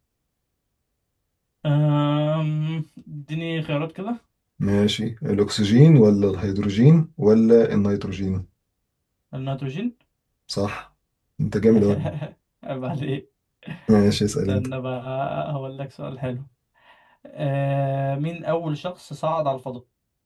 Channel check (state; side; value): identical; both; correlation 1.00